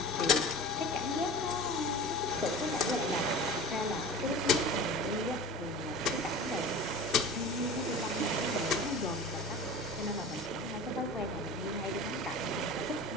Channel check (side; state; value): both; normal; correlation 0.37